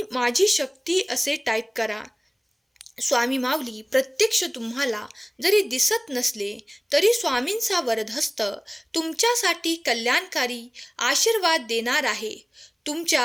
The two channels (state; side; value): identical; both; correlation 1.00